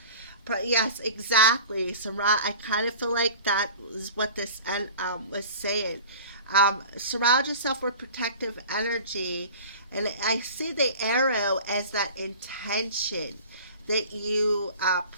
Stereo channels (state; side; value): inverted; both; correlation -0.41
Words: Yes, exactly. Surround. I kind of feel like that is what this was saying. Surround yourself with protective energy, and I see the arrow as that intention that you